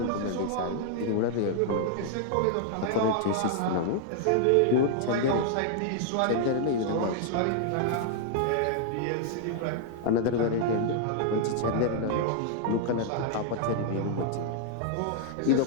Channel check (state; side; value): different; both; correlation -0.01